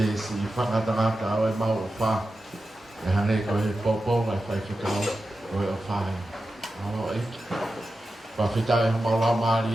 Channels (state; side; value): normal; both; correlation 0.92